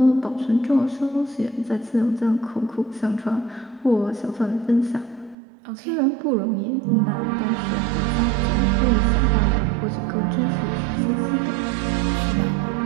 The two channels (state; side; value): drops out; left; at 5.4 s